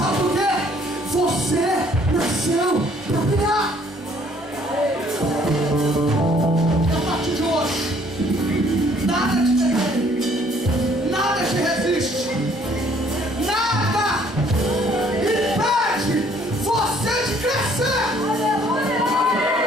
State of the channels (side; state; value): both; normal; correlation 0.61